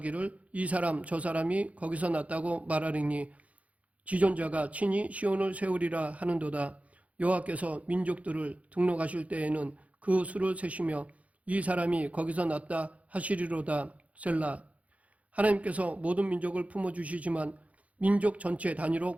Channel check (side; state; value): left; late; 0.067 ms